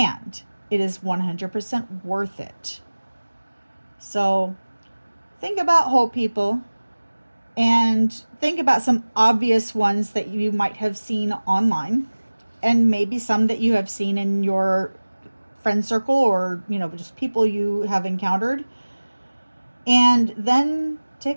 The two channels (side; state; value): both; inverted; correlation -1.00